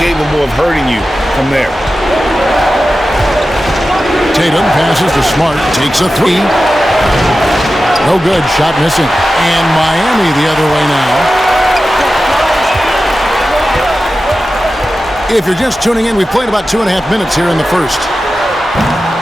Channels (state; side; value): normal; both; correlation 0.93